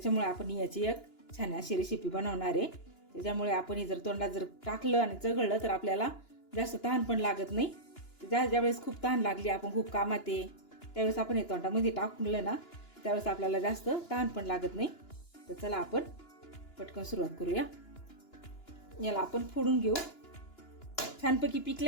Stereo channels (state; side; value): late; right; 2.9 ms